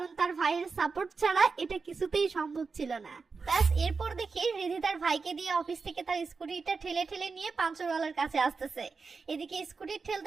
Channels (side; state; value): left; quieter; 4.7 dB